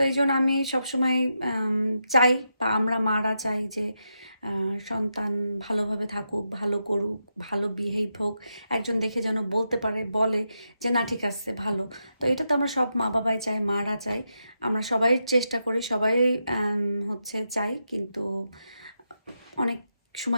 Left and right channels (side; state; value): both; inverted; correlation -0.85